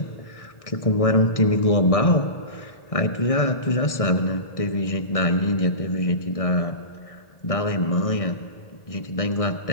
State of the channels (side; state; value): right; late; 1.6 ms